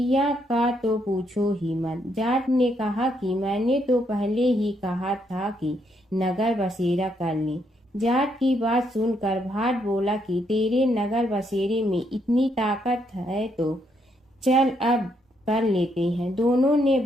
का तो पूछो ही मत। जाट ने कहा कि मैंने तो पहले ही कहा था कि नगर बसेरा कर ले। जाट की बात सुनकर भाट बोला कि तेरे नगर बसेरे में इतनी ताकत है तो चल अब कर लेते हैं। दोनों ने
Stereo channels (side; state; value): both; normal; correlation 0.75